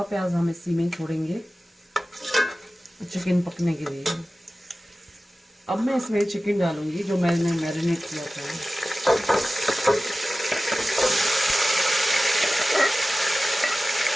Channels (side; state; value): both; normal; correlation 0.95